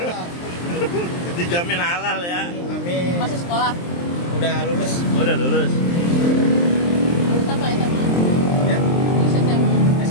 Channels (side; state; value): right; late; 23 ms